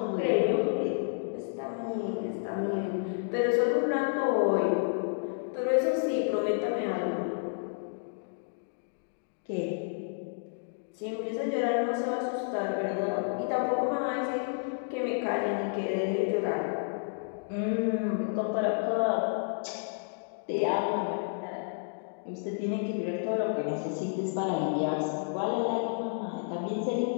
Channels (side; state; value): right; silent; digital silence